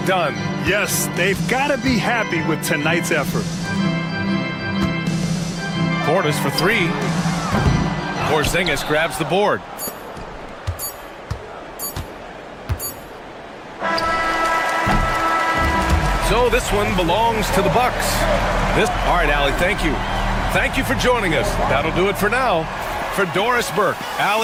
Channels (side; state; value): both; identical; correlation 1.00